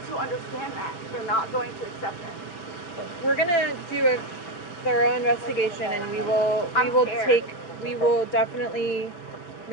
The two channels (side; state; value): right; late; 5.9 ms